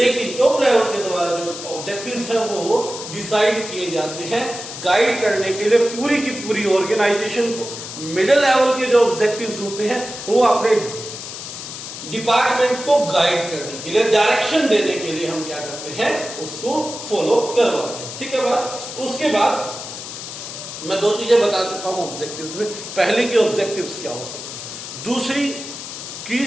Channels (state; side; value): noise; left; hiss, 9 dB below the sound